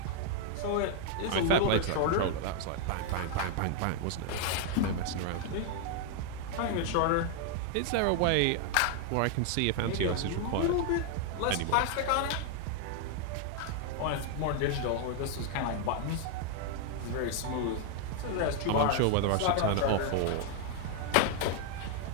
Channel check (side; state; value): both; different; correlation 0.00